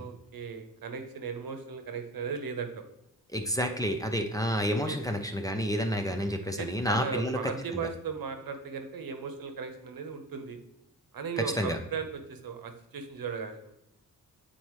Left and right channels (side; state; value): both; normal; correlation 0.34